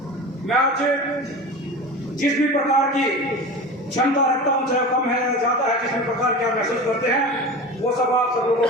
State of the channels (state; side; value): normal; both; correlation 0.31